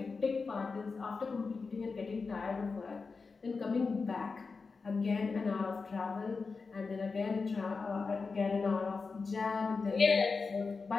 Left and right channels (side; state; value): right; quieter; 4.5 dB